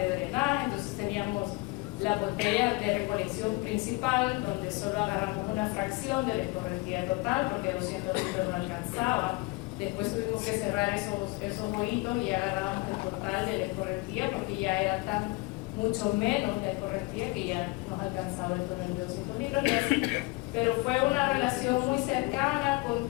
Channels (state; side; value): quieter; right; 23.4 dB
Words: drenaje, entonces teníamos la botella de recolección principal, donde solo agarramos una fracción de la escorrentía total, porque 200 litros no alcanzaba. Después tuvimos que cerrar esos hoyitos y agarrábamos el total de la escorrentía, porque ya era mucho menos de escorrentía que ya nos alcanzaba el tonel de 200 litros. Pero fue una relación muy cercana, con